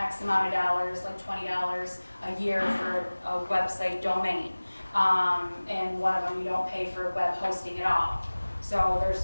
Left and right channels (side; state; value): both; inverted; correlation -1.00